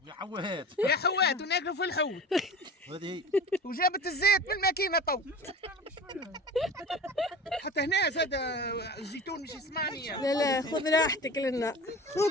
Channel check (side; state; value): both; normal; correlation 0.35